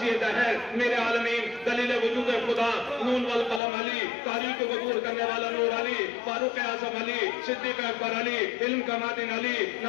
دہر، میرے عالمین، دلیل وجود خدا، نون والقلم علی، تاریخ کو عبور کرنے والا نور علی، فاروق اعظم علی، صدیق اکبر علی، علم کا معدن علی،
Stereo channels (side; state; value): right; drops out; at 3.6 s